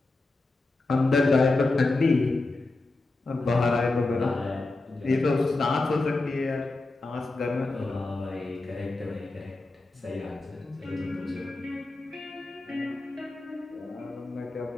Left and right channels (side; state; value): right; quieter; 3.2 dB